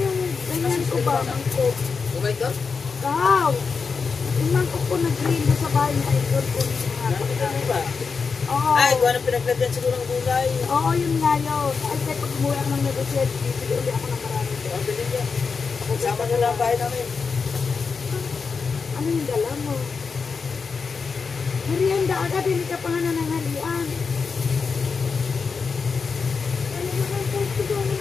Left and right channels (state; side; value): quieter; right; 5.2 dB